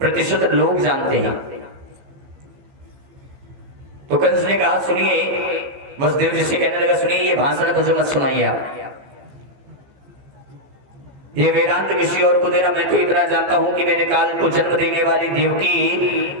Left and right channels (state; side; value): late; left; 15 ms